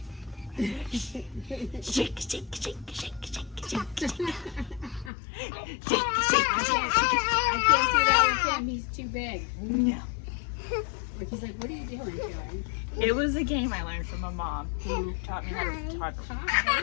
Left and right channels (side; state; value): right; drops out; at 5.1 s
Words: Shake, shake, shake, shake, shake, shake, shake, shake. I can't do that with him. He's too big. No. Like, he's like, what are you doing, Joey? It was a game I learned from my mom, who taught me how to